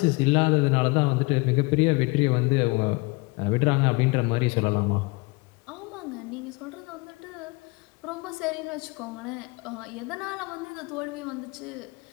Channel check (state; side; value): quieter; right; 26.5 dB